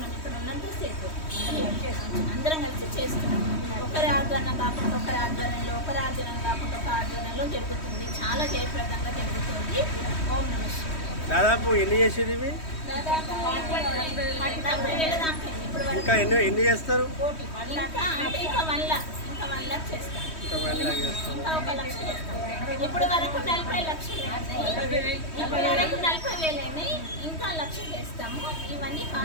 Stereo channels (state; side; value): late; right; 3.1 ms